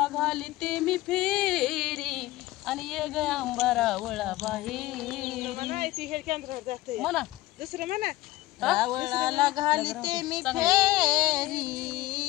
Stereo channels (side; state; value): right; quieter; 17.6 dB